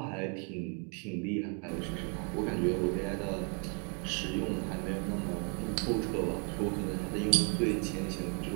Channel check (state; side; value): quieter; left; 38.0 dB